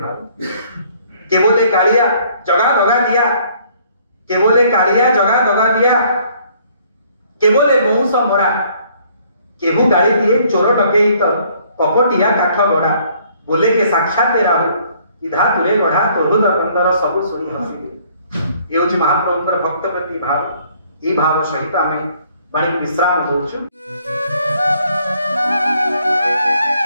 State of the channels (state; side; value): inverted; both; correlation -0.62